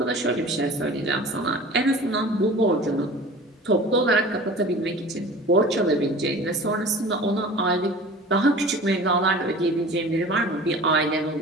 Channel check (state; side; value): normal; both; correlation 0.41